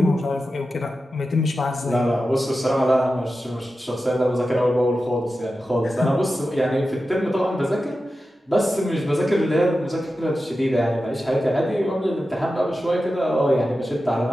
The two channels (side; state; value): both; normal; correlation 0.92